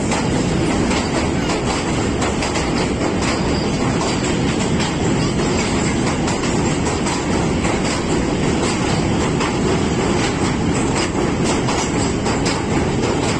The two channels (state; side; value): noise; left; hum, 17 dB below the sound